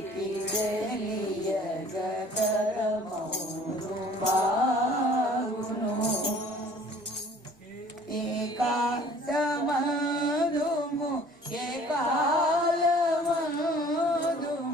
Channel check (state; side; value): normal; both; correlation 0.52